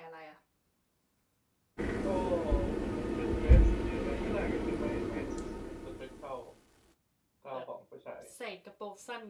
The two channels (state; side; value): identical; both; correlation 1.00